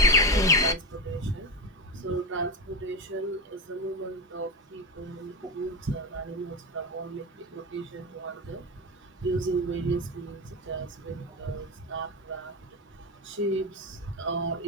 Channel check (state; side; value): normal; both; correlation 0.15